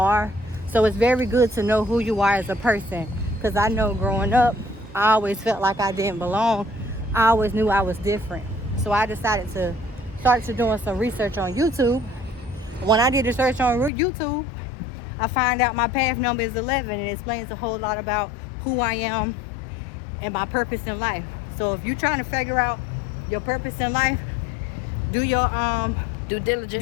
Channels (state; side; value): drops out; right; at 13.9 s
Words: So it's very good to know who you are as a person. Because I know growing up, I always felt like I didn't belong. I always knew I was different. So I decided to start doing some research on YouTube. When I did the search on YouTube, I find out my path number is 11, and it explains a whole lot about who I am and my purpose in life. So if you're trying to figure out your purpose in life, do your due diligence.